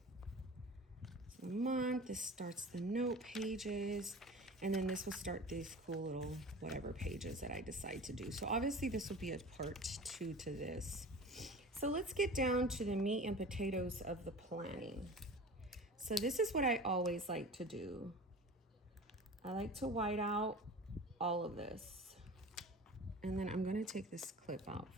So the month, this starts the note pages, and then this will start these cool little whatever pages that I decide to do. So obviously this will be a part 2 to this. So let's get down to the meat and potatoes of the planning. So this is what I always like to do. I like to white out all of this. And then I'm gonna take this clip out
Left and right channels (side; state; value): both; normal; correlation 0.37